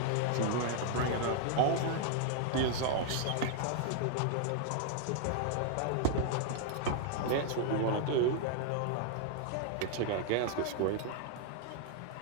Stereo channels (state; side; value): different; both; correlation 0.00